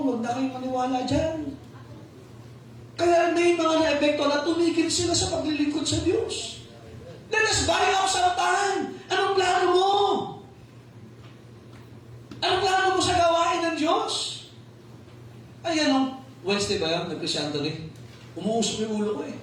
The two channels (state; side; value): identical; both; correlation 1.00